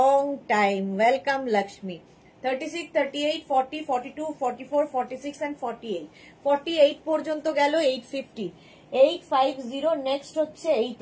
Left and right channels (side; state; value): both; identical; correlation 1.00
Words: time, welcome Lakshmi. 36, 38, 40, 42, 44, 46 and 48, 48 পর্যন্ত গেল 850, 850। নেক্সট হচ্ছে